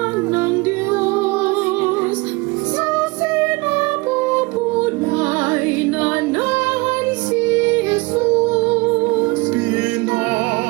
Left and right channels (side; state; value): left; quieter; 24.9 dB